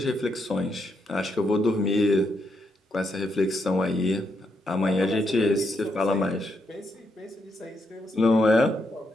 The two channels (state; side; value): normal; both; correlation 0.79